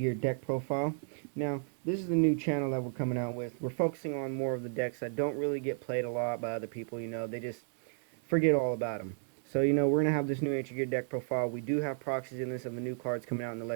deck profile. Now, this is the new channel that we're coming out with. We're focusing on more of the decks that don't really get played a lot by other people. They just forget all about them. So, we're going to have this new Ancient Gear deck profile. We do have proxies in this of the new cards coming out in the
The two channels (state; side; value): silent; left; digital silence